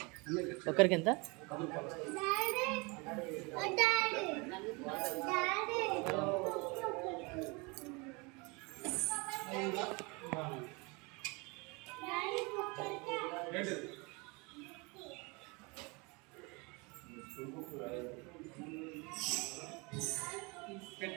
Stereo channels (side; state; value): left; quieter; 28.1 dB